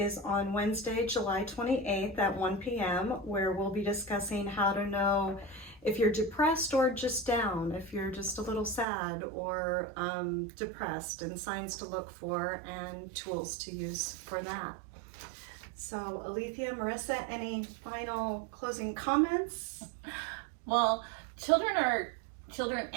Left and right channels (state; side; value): drops out; left; at 8.8 s